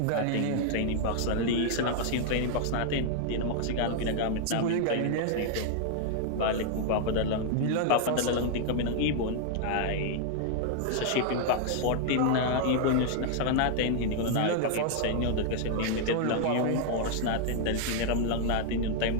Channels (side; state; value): both; different; correlation 0.00